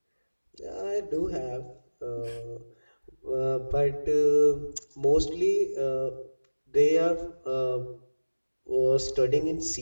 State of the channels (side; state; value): both; inverted; correlation -1.00